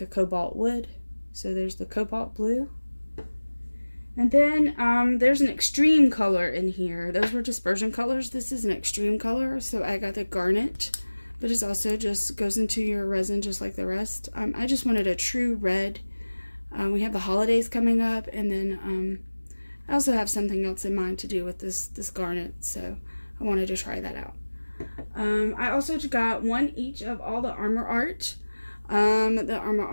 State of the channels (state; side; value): inverted; both; correlation -1.00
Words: a cobalt would. So there's the Cobalt Blue. And then there's an extreme color in here. Those were dispersion colors. This is an extreme color, so I got the Garnet. But it also just goes into your resin just like the rest. I just wanted a true red We have the holidays coming up, and then I also have something else in mind to do with this garnet, so I wanted to try that out. I also got one each of all the Armor Art. The Armor